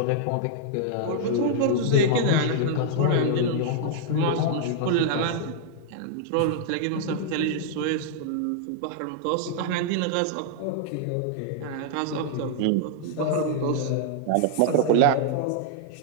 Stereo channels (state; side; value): different; both; correlation -0.01